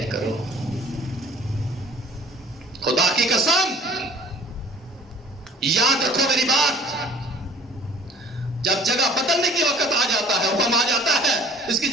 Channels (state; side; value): normal; both; correlation 0.49